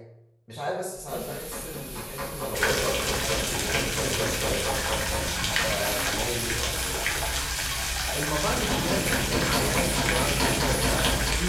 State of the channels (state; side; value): identical; both; correlation 1.00